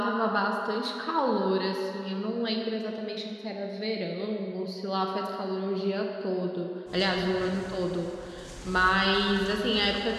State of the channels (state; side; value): identical; both; correlation 1.00